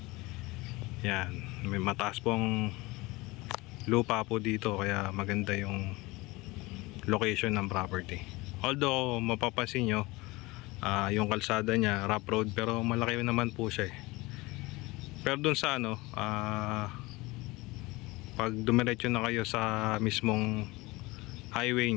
Yan, may mataas pong lupa po dito kaya maganda yung location ng property. Although mapapansin nyo, yung kalsada niya rough road pero malaki naman po siya pero dun sa pag dumiretso na kayo sa mismong highway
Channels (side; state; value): right; quieter; 22.2 dB